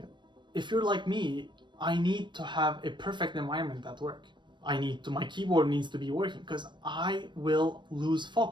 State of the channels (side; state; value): left; late; 0.22 ms